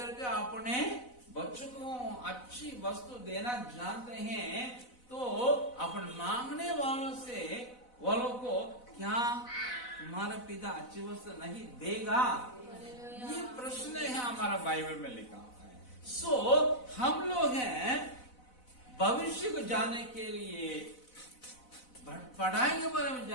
के अपने बच्चों को अच्छी वस्तु देना जानते हैं, तो अपन मांगने वालों को क्या तुम्हारा पिता अच्छी वस्तु नहीं देगा, ये प्रश्न है हमारा बाइबल में लिखा हुआ है। सो हम लोग हैं भविष्य को जानने के लिए, पढ़ाई के बारे में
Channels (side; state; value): right; late; 4.0 ms